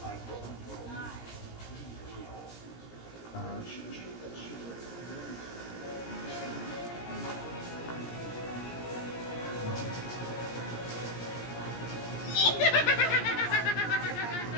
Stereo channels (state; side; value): late; right; 17 ms